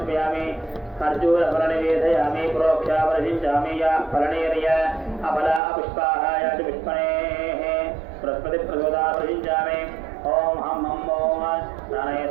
खर्जूरफलनिवेदयामि प्रोक्षावरसिञ्चामि या फलनेर्य अफला पुष्पाः या च पुष्पणेः बृहस्पतिप्रचोदावरसिञ्चामि ॐ हं हं ॐ प्राणाय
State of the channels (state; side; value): drops out; left; at 5.6 s